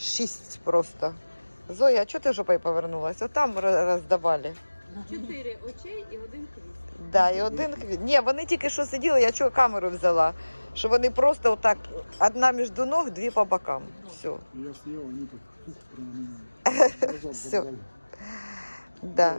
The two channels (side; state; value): both; inverted; correlation -1.00